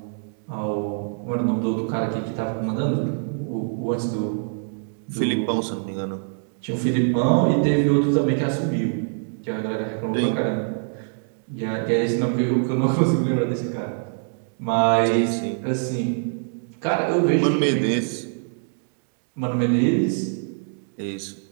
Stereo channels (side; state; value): left; silent; 63 dB below the other